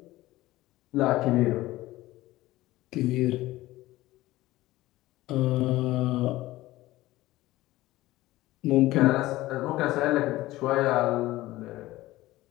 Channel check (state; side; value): quieter; right; 17.3 dB